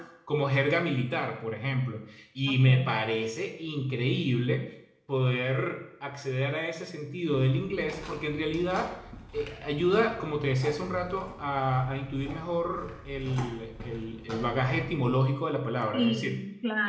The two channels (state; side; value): identical; both; correlation 1.00